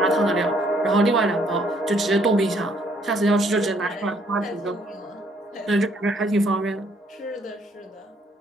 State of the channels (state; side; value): normal; both; correlation 0.67